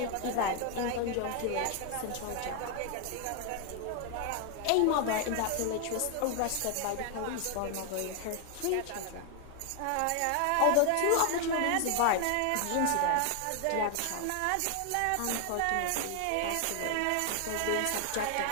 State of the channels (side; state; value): both; different; correlation 0.00